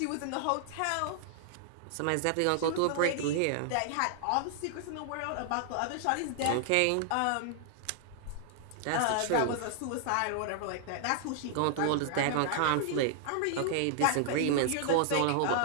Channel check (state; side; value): different; both; correlation -0.01